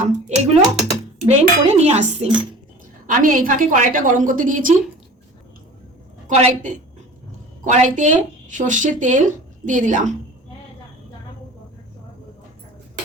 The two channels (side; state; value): both; normal; correlation 0.41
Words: এগুলো ব্লেন্ড করে নিয়ে আসছি। আমি এই ফাঁকে কড়াইটা গরম করতে দিয়েছি। কড়াইতে সর্ষের তেল দিয়ে দিলাম।